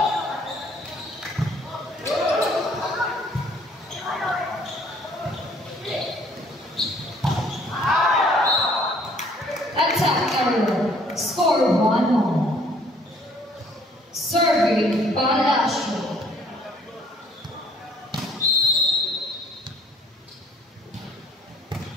Score 1-1. Serving Palacio.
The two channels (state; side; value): normal; both; correlation 0.60